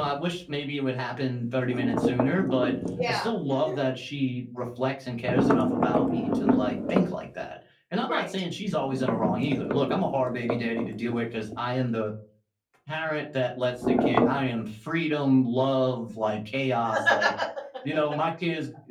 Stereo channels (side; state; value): both; identical; correlation 1.00